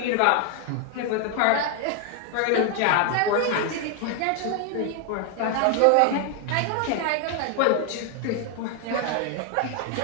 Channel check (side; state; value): both; different; correlation 0.00